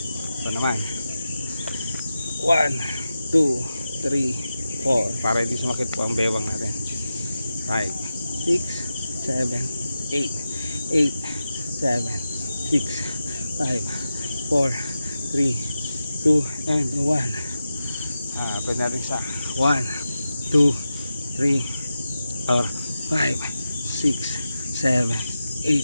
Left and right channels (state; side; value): inverted; both; correlation -0.90